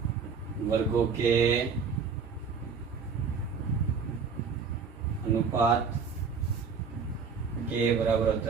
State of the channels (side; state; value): left; quieter; 5.6 dB